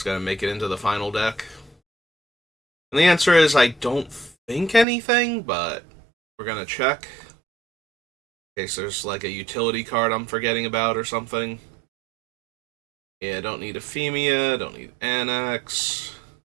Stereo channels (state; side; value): drops out; left; at 4.9 s